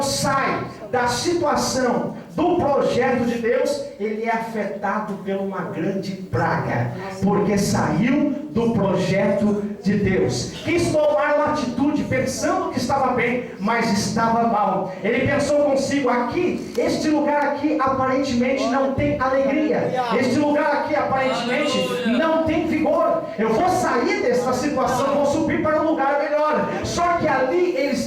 sai da situação do projeto de Deus, ele é afetado por uma grande praga, porque saiu do projeto de Deus. Quis tomar uma atitude pensando que estava bem, mas estava mal. Ele pensou consigo: aqui, este lugar aqui aparentemente não tem alegria, este lugar aqui aparentemente não tem vigor. Eu vou sair dessa situação, vou subir para um lugar melhor. Só que ali ele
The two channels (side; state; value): both; identical; correlation 1.00